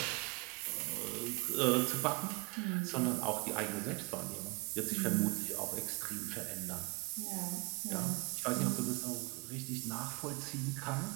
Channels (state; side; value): quieter; left; 28.4 dB